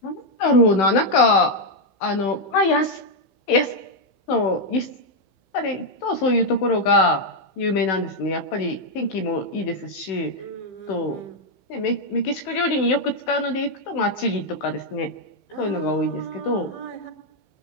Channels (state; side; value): late; right; 16 ms